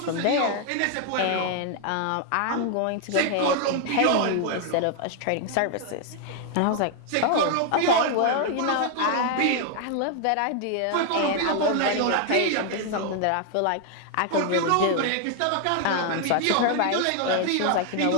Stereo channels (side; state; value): both; different; correlation 0.00